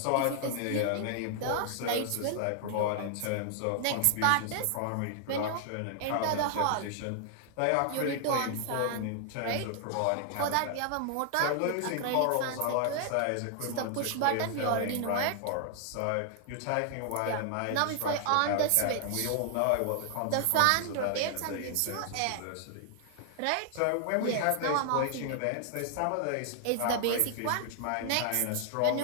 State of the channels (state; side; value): different; both; correlation 0.00